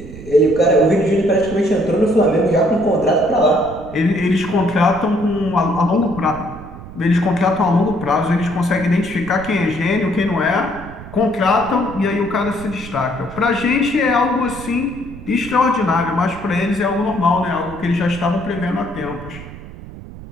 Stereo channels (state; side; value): noise; right; rumble, 14 dB below the sound